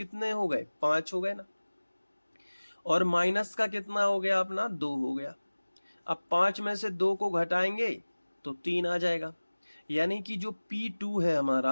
हो गए? 5 हो गए ना। और माइनस का कितना हो गया अपना? 2 हो गया। अब 5 में से 2 को घटाएंगे तो 3 आ जाएगा, यानी कि जो P2 है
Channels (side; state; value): both; inverted; correlation -1.00